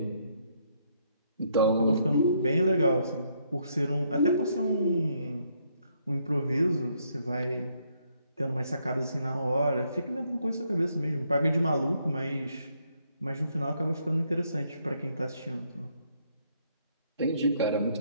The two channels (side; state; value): both; inverted; correlation -0.72